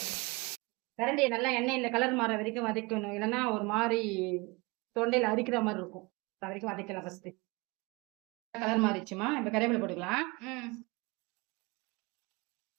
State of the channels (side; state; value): left; quieter; 26.2 dB